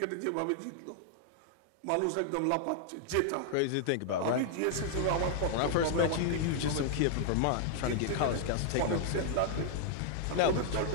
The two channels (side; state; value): both; different; correlation -0.01